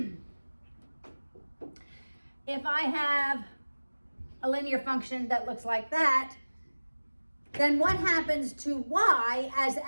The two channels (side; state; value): both; inverted; correlation -1.00